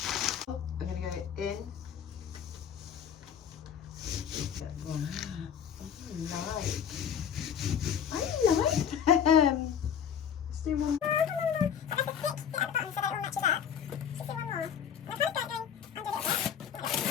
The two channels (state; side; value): quieter; right; 8.3 dB